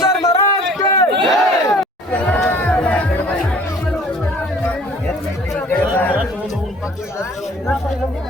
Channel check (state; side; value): normal; both; correlation 0.52